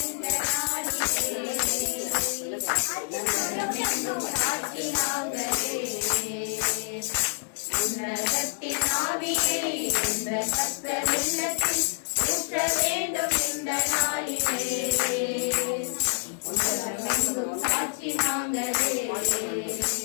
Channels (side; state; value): right; silent; digital silence